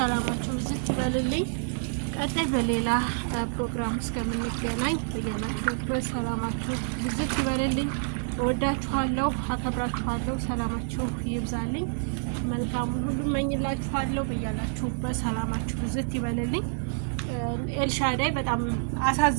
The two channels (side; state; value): left; silent; digital silence